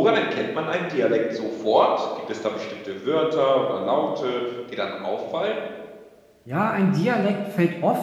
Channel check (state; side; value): identical; both; correlation 1.00